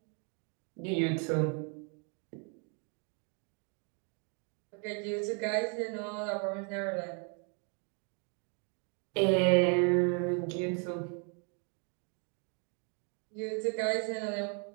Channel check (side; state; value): left; quieter; 38.6 dB